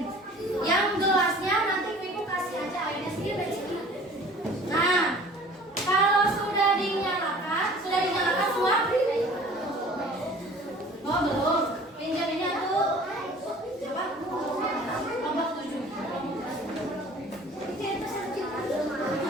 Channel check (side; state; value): both; normal; correlation 0.47